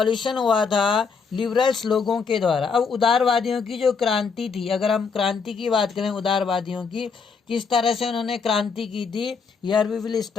हुआ था लिबरल्स लोगों के द्वारा। अब उदारवादियों की जो क्रांति थी, अगर हम क्रांति की बात करें उदारवादियों की, किस तरह से उन्होंने क्रांति की थी, here we will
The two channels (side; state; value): right; quieter; 5.3 dB